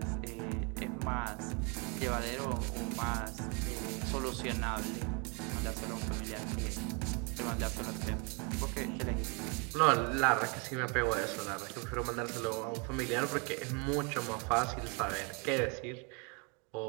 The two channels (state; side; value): quieter; left; 33.3 dB